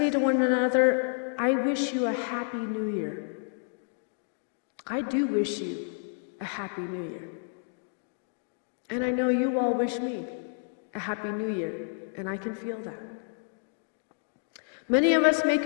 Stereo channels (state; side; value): silent; right; digital silence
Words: to one another, I wish you a happy new year. I do wish you a happy new year. And I know you all wish me a happy new year, and I can feel that. Many of us